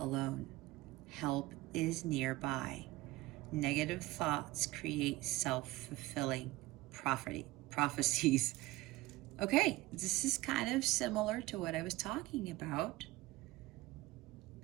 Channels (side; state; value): left; quieter; 18.8 dB